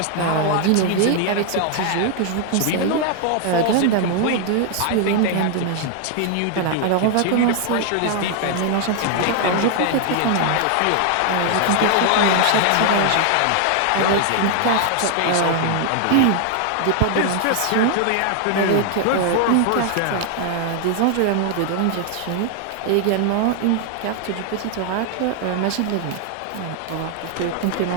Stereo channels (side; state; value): both; different; correlation 0.00